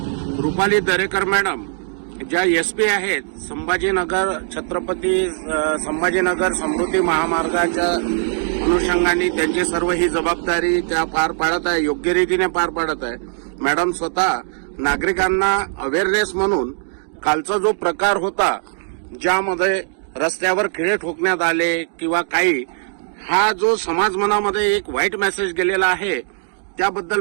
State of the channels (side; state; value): left; silent; 66 dB below the other